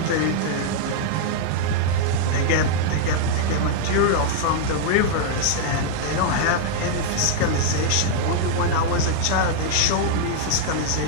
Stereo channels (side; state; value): both; different; correlation -0.01